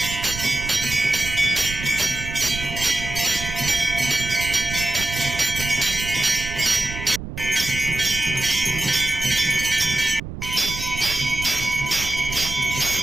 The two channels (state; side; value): noise; right; rumble, 9 dB below the sound